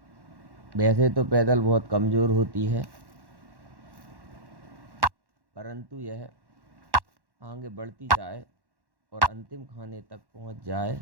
वैसे तो पैदल बहुत कमज़ोर होती है, परंतु यह आगे बढ़ती जाए और अंतिम खाने तक पहुंच जाए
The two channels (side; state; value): left; late; 1.1 ms